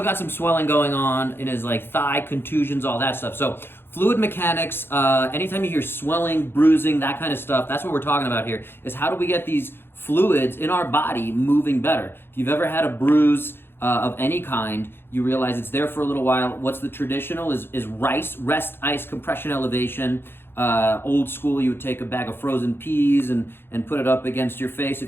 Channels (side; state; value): right; late; 0.11 ms